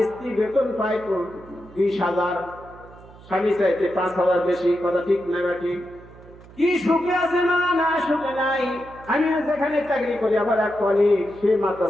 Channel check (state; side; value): noise; right; hum, 21 dB below the sound